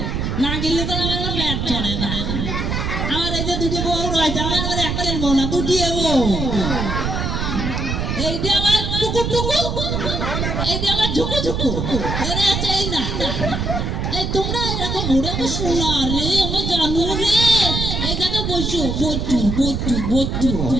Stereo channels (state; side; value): noise; right; rumble, 1 dB below the sound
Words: না গেলে তো আমার পেট চলে না। আমার এই যে দুটি বউ রয়েছে, আমার একটাই বউ না, দুটি বউ। এইটা আমার টুকু টুকু, এইটা আমার ঝুকু ঝুকু, এরা আছে এই না। এই তোমরা এরকম ঘুরে শোনা রে, আমার জানো রে, এই জায়গায় বসো, বসু বসু বসু